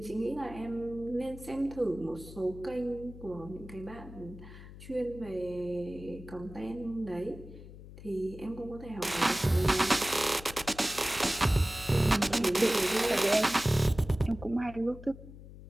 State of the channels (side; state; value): left; noise; hum, 15 dB below the sound